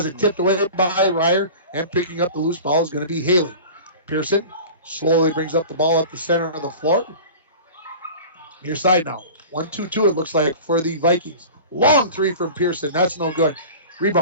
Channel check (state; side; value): inverted; both; correlation -0.37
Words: it tipped away by Ryer, and picking up the loose ball is going to be Haley. Pearson slowly brings up the ball up the center of the floor. Near side now. 1-2-2 it looks like for the Vikings. Long 3 from Pearson. That's no good.